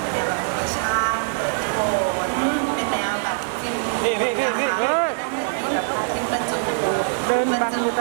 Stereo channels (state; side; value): silent; left; 60 dB below the other